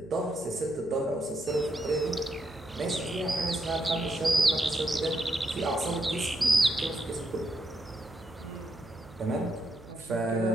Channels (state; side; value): noise; right; hum, 21 dB below the sound